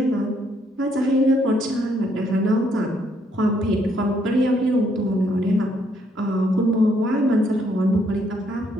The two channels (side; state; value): both; normal; correlation 0.70